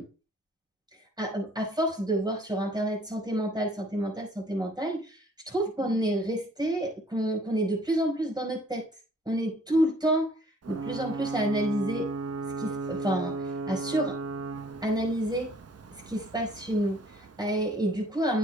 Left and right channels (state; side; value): normal; both; correlation 0.57